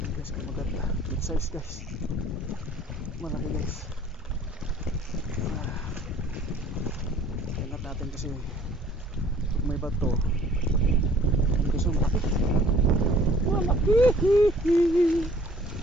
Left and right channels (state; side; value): normal; both; correlation 0.55